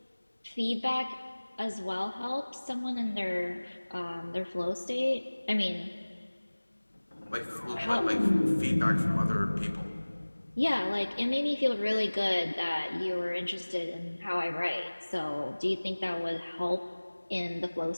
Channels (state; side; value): inverted; both; correlation -1.00